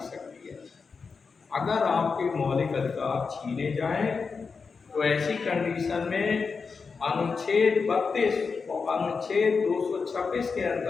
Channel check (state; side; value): quieter; right; 5.1 dB